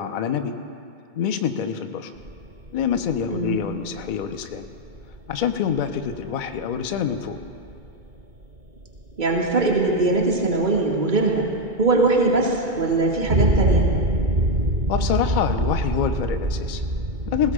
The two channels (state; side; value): late; left; 2.2 ms